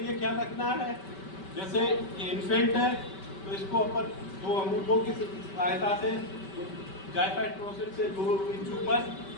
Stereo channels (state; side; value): late; right; 5.2 ms